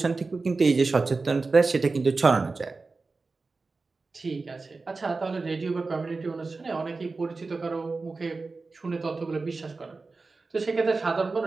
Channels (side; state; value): left; quieter; 3.9 dB